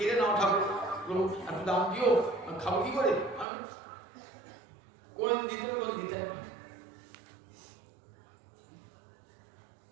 নাও ঠাকুর, এত দাম দিও, খাবো কি করে? কোনদিন দিতেন, কোন দিতেন।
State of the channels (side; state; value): left; drops out; at 3.5 s